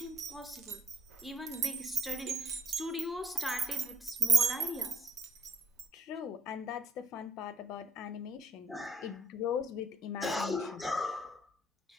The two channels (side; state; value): both; normal; correlation 0.68